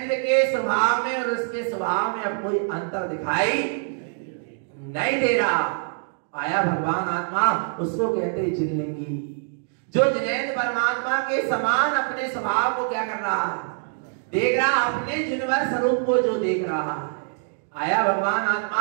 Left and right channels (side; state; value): left; silent; digital silence